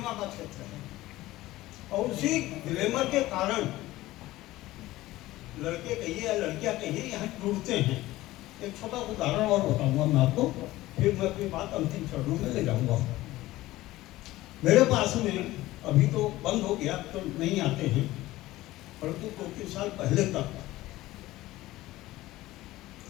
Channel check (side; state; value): right; quieter; 17.1 dB